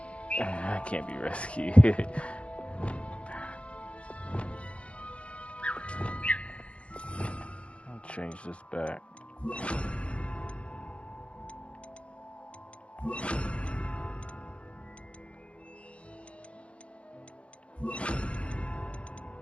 I can't be rescued. I'll change this back.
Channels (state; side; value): late; right; 0.061 ms